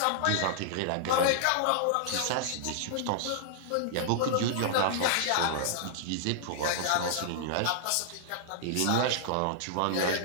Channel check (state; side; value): different; both; correlation -0.01